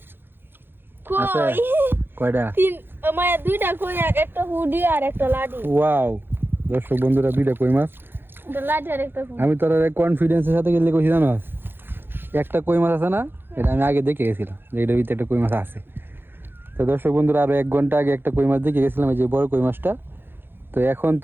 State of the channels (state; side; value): late; left; 0.10 ms